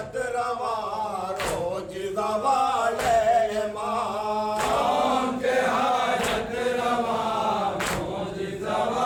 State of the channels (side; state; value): both; identical; correlation 1.00